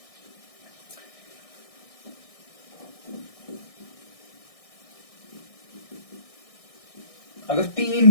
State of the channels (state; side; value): late; right; 1.6 ms